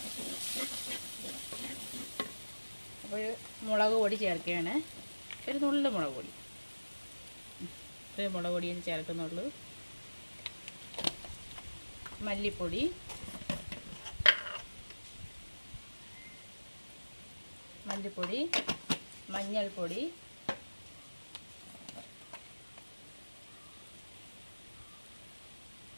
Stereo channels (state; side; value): inverted; both; correlation -1.00